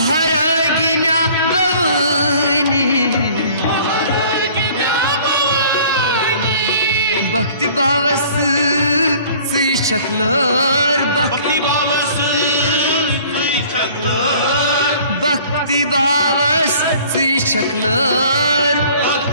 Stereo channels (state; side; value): inverted; both; correlation -0.51